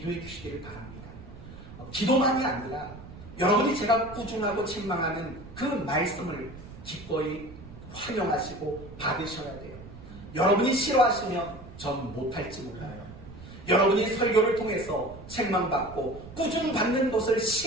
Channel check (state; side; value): noise; right; rumble, 15 dB below the sound